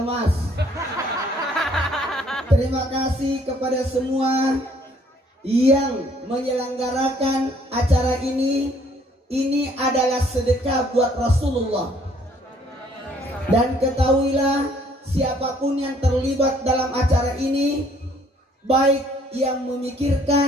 Terima kasih kepada semua yang menyelenggarakan acara ini. Ini adalah sedekah buat Rasulullah. Dan ketahuilah, siapapun yang terlibat dalam acara ini, baik yang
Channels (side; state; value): both; normal; correlation 0.62